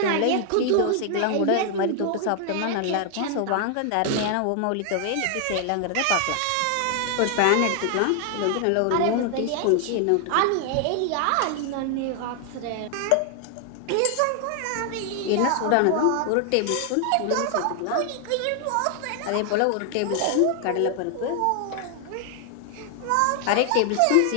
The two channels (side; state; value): both; different; correlation 0.00